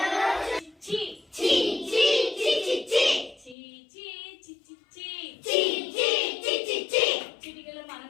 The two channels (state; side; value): drops out; right; at 3.6 s